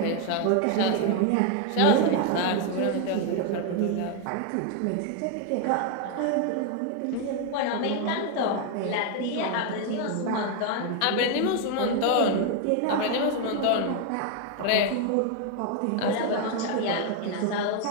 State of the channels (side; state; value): both; different; correlation 0.01